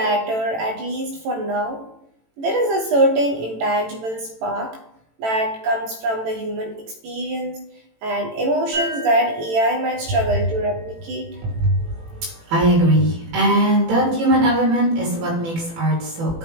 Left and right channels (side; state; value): left; late; 18 ms